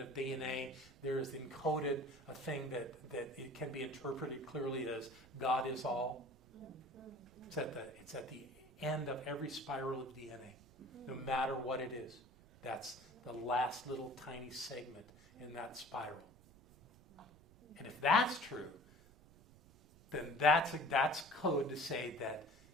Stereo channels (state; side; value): noise; right; rumble, 23 dB below the sound